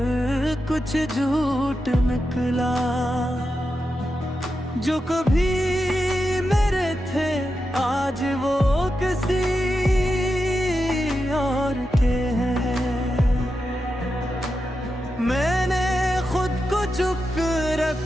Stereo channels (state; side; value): normal; both; correlation 0.88